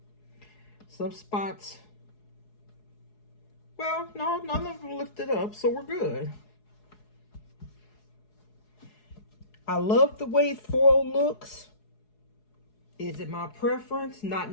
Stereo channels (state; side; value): late; right; 4.7 ms